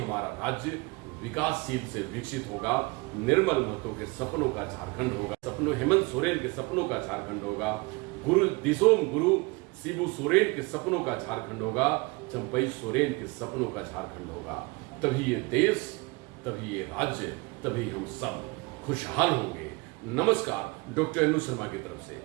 राज्य विकासशील से विकसित होगा। निर्मल महतो के सपनों का झारखंड होगा, सपनों हेमंत सोरेन के सपनों का झारखंड होगा, गुरु दिसोम गुरु शिबू सोरेन के सपनों का झारखंड होगा, चंपई सोरेन के सपनों का झारखंड होगा। तभी ये देश, तभी ये राज्य, तभी हम सब खुशहाल होंगे। नमस्कार, डॉक्टर अनु शर्मा की तरफ से।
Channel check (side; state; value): left; quieter; 26.3 dB